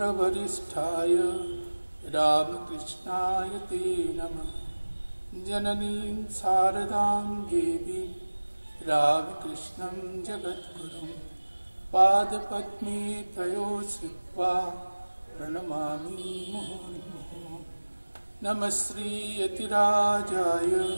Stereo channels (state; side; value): inverted; both; correlation -1.00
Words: रामकृष्णाय ते नमः। जननीं शारदां देवीं रामकृष्णं जगद्गुरुं पादपद्मे तयो श्रुत्वा प्रणमामि मुहुर्मुहुः। नमः श्रीयतिराजाय